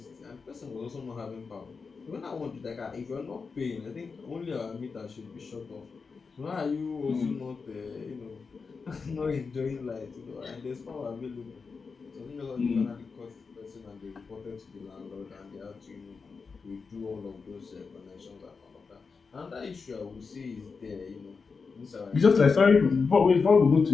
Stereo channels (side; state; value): right; quieter; 5.0 dB